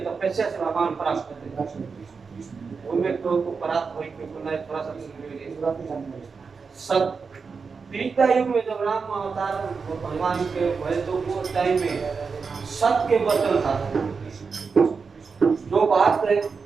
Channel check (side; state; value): left; quieter; 5.1 dB